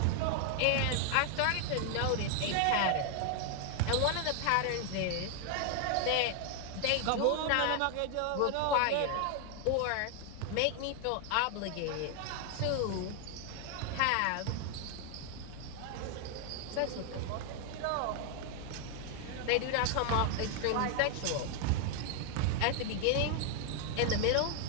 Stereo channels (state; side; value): different; both; correlation 0.00